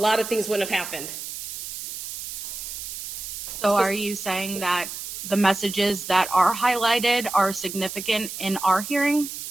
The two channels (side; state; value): right; noise; hiss, 8 dB below the sound